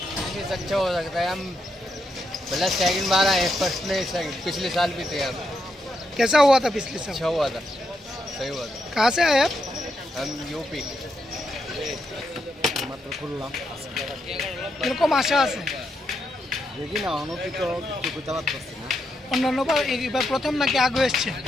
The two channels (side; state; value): both; normal; correlation 0.81